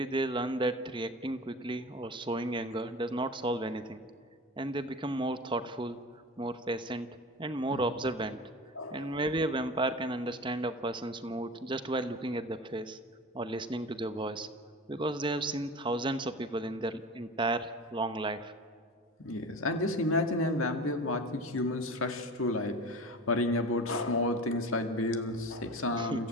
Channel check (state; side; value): normal; both; correlation 0.33